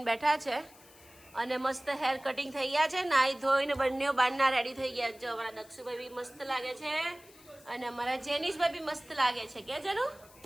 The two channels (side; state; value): left; noise; hiss, 24 dB below the sound